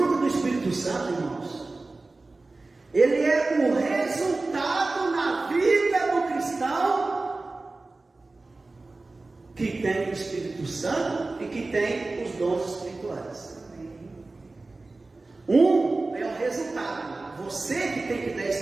do Espírito Santo, irmãos, ele é o resultado na vida do cristão que tem o Espírito Santo e que tem os dons espirituais. Um é o resultado. Você que tem que dar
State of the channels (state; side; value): quieter; left; 3.3 dB